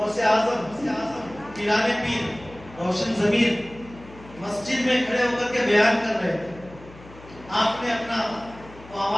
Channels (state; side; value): noise; left; hum, 20 dB below the sound